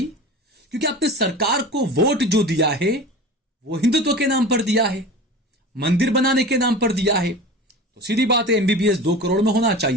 क्योंकि आपने सरकार को वोट जो दिया है वो हिंदुत्व के नाम पर दिया है, मंदिर बनाने के नाम पर दिया है। तो सीधी बात है, एमबीबीएस 2 करोड़ में होना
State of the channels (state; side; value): normal; both; correlation 0.34